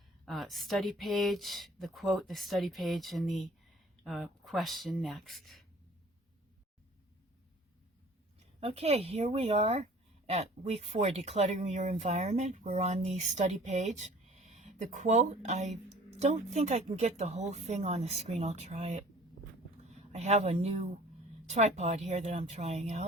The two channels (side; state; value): both; normal; correlation 0.49